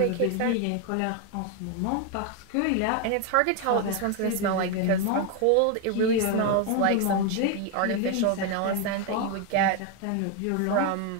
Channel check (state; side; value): different; both; correlation 0.01